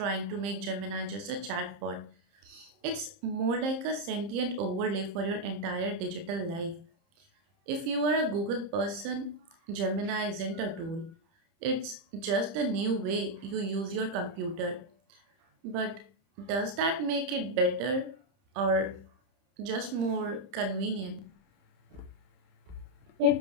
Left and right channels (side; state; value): left; late; 30 ms